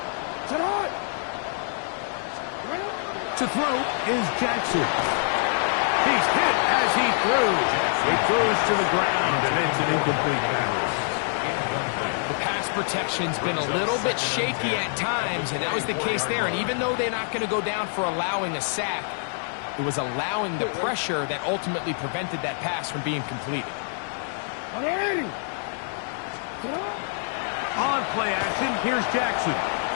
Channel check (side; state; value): right; silent; 61 dB below the other